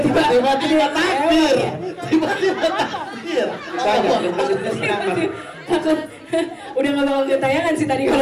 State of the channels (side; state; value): both; identical; correlation 1.00